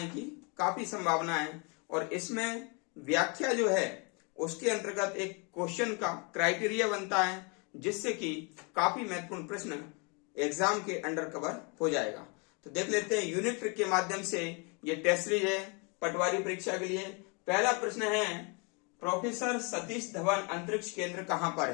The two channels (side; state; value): right; quieter; 32.8 dB